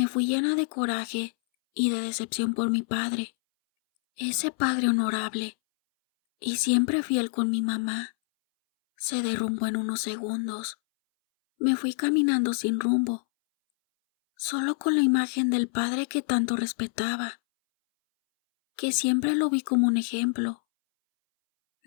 fui llena de coraje y de decepción por mi padre. Ese padre honorable y siempre fiel con mi mamá, se derrumbó en unos segundos. Me fui caminando sin rumbo. solo con la imagen del padre que tanto respetaba, que siempre lo vi como un ejemplo.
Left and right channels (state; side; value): silent; right; 60 dB below the other